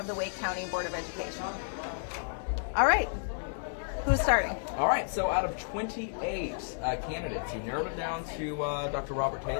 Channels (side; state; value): right; silent; digital silence